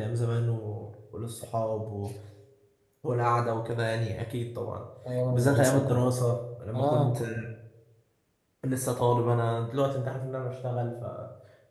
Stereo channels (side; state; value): both; identical; correlation 1.00